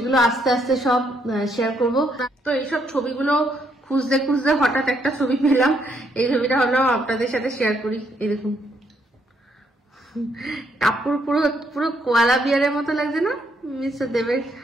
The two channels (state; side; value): normal; both; correlation 0.73